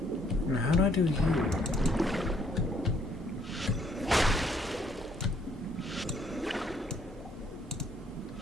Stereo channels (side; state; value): both; normal; correlation 0.66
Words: Now how do I do you?